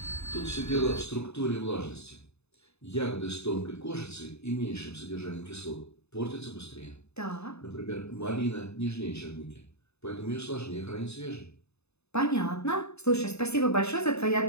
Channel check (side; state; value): right; late; 0.80 ms